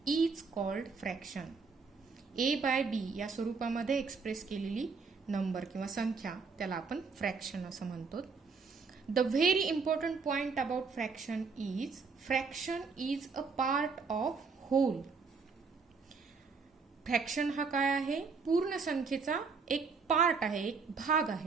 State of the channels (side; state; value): left; quieter; 4.9 dB